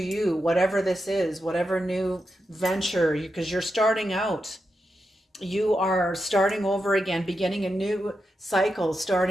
whatever this is, whatever new venture, because you're starting out. You are starting over again, beginning a new cycle,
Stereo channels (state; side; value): normal; both; correlation 0.87